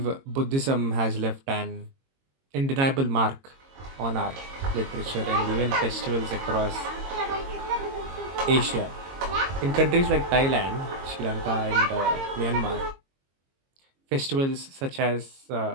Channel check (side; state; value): left; late; 22 ms